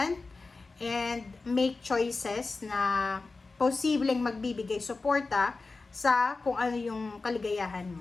and make choices na posibleng magbibigay suporta sa kung ano yung kaligayahan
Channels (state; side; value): quieter; right; 3.8 dB